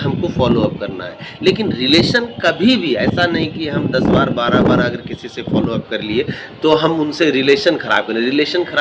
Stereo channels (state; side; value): identical; both; correlation 1.00